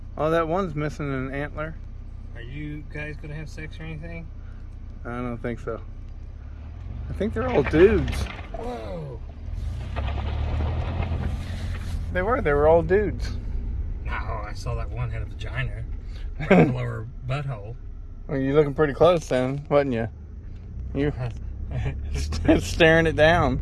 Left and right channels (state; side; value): identical; both; correlation 1.00